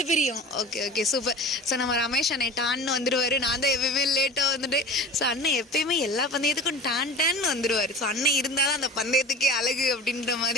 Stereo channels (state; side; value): normal; both; correlation 0.36